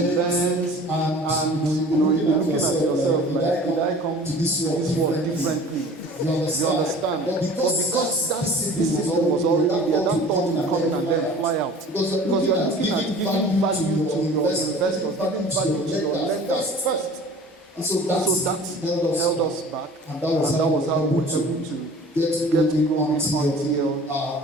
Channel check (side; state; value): both; normal; correlation 0.45